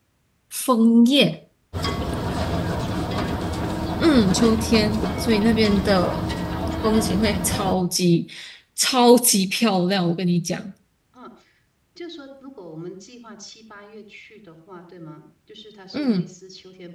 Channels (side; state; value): both; identical; correlation 1.00